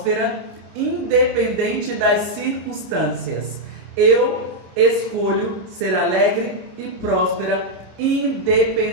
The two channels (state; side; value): late; left; 27 ms